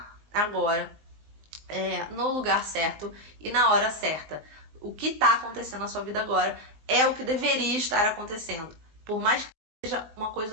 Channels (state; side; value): late; left; 19 ms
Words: agora no lugar certo e na hora certa. O que está acontecendo na sua vida agora é o que deveria estar acontecendo. Por mais que seja uma